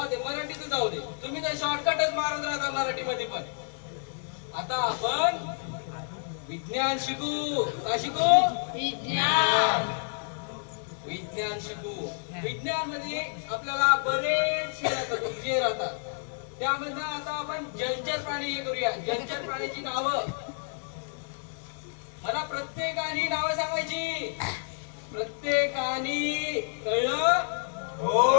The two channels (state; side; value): silent; right; 58 dB below the other